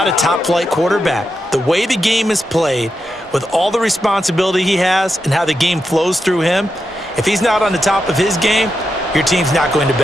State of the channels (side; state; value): both; normal; correlation 0.87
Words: a top-flight quarterback. The way the game is played, with all the responsibility he has and how the game flows through him, if he's not on the top of his game, your team's not going to